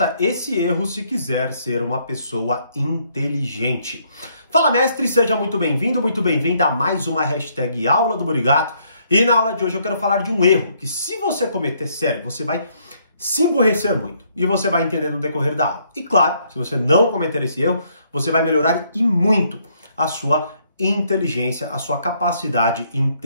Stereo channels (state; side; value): inverted; both; correlation -0.69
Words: esse erro se quiser ser uma pessoa inteligente. Fala, mestre, seja muito bem-vindo, muito bem-vinda a mais uma hashtag Aula do Murigato. E na aula de hoje eu quero falar de um erro que, se você cometer, sério, você vai se emburrecer muito e você vai entender no decorrer da aula. E claro, se você não cometer esse erro, você vai melhorar e muito a sua inteligência, a sua capacidade